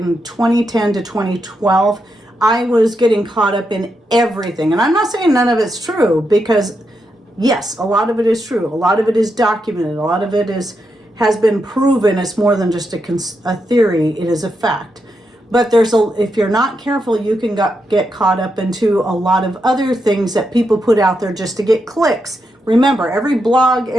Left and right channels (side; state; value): both; normal; correlation 0.84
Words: 2010 to 2012. I was getting caught up in everything. And I'm not saying none of it's true, because yes, a lot of it is true. A lot of it is documented. A lot of it has been proven. It's more than just a theory. It is a fact. But if you're not careful, you can get caught up into a lot of other things that people put out there just to get clicks. Remember, every blog,